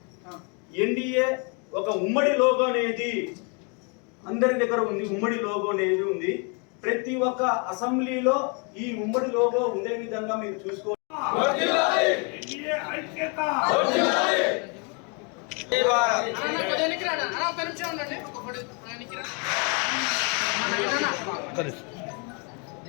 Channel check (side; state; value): right; quieter; 35.3 dB